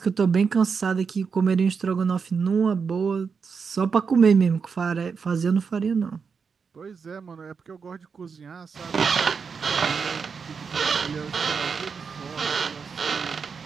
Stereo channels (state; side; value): quieter; left; 5.7 dB